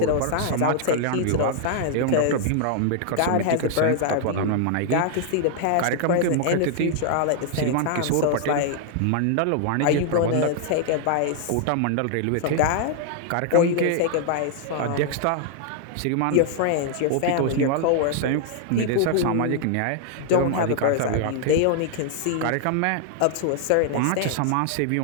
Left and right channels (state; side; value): different; both; correlation 0.00